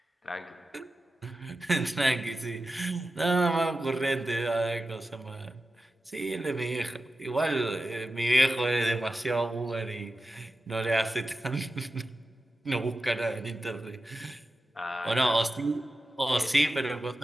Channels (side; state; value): both; normal; correlation 0.92